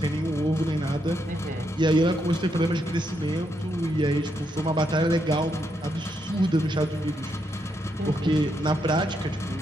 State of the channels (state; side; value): normal; both; correlation 0.79